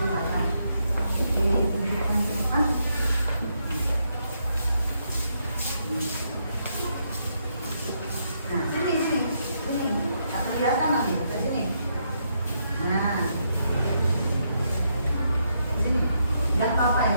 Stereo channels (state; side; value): inverted; both; correlation -0.77